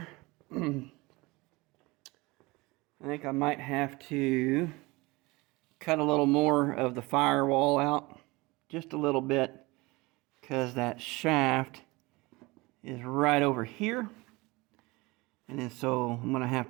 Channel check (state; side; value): quieter; left; 23.1 dB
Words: I think I might have to cut a little more of the firewall out, just a little bit, because that shaft is right over here. And then so I'm going to have